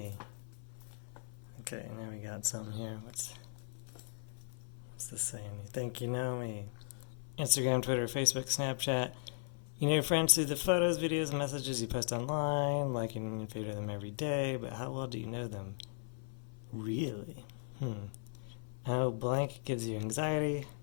Okay, now we got something here. What's this saying? You think you know me. Instagram, Twitter, Facebook, Snapchat. You know your friends through the photos, videos, and messages you post online, liking and favorite them every day, but how well do you know them? Really? I know blank gives you anxiety.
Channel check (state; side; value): silent; right; 53 dB below the other